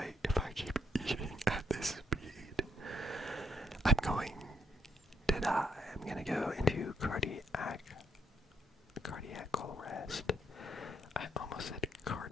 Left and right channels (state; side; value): normal; both; correlation 0.74